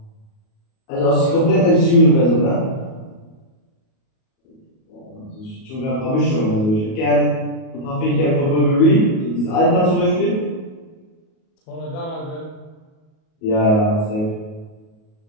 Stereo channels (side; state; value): right; late; 37 ms